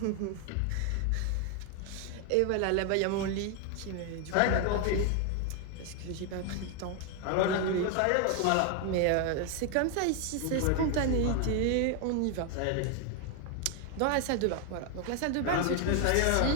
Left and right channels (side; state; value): both; different; correlation 0.01